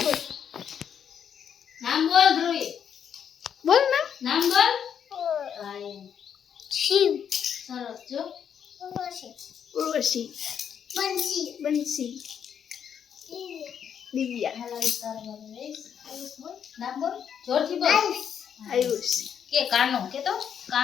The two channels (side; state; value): right; quieter; 8.2 dB